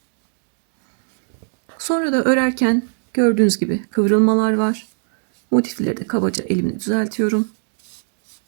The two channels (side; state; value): left; silent; digital silence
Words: Sonra da örerken gördüğünüz gibi kıvrılmalar var. Motifleri de kabaca elimle düzeltiyorum.